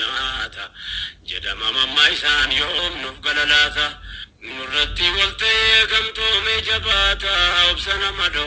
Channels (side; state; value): both; identical; correlation 1.00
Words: جدا ماما إسان يوم نفقللاتا نرتي والتي كم تومي جباتا وبسنا